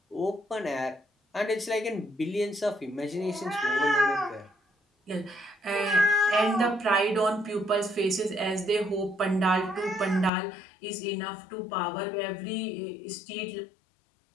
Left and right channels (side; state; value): right; drops out; at 10.3 s